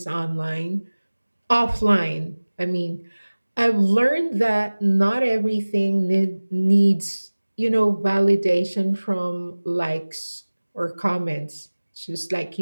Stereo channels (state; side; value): inverted; both; correlation -1.00